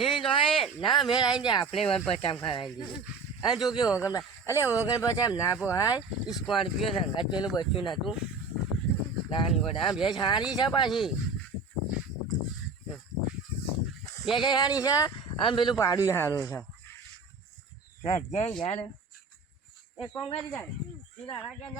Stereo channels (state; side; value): quieter; left; 4.0 dB